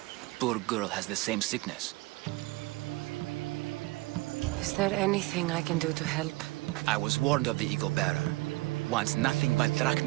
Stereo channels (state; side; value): quieter; left; 22.0 dB